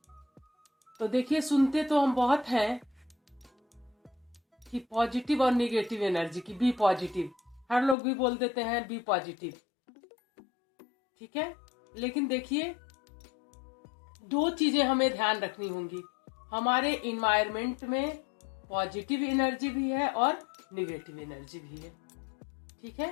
तो देखिए, सुनते तो हम बहुत हैं कि पॉजिटिव और निगेटिव एनर्जी की, बी पॉजिटिव। हर लोग भी बोल देते हैं बी पॉजिटिव, ठीक है। लेकिन देखिए, दो चीजें हमें ध्यान रखनी होंगी। हमारे इन्वायरमेंट में पॉजिटिव एनर्जी भी है और निगेटिव एनर्जी भी है, ठीक है।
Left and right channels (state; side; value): drops out; right; at 8.0 s